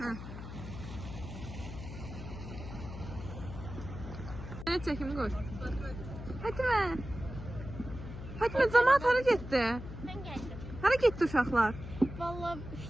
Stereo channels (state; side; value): noise; left; hum, 10 dB below the sound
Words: Ne çekimi koy. Fatime. Fatime cemaat hara getdi? Mən gəldim. Hara getdi uşaqlar? Valla